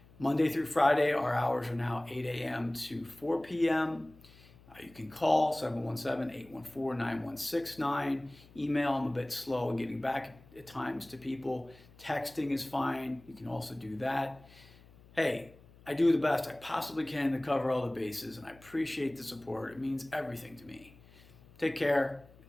Monday through Friday, our hours are now 8 a.m. to 4 p.m. You can call 717-814-9169. Email, I'm a bit slow in getting back at times to people. Texting is fine. You can also do that. Hey, I do the best I possibly can to cover all the bases, and I appreciate the support. It means everything to me. Take care and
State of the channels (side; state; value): left; noise; hum, 24 dB below the sound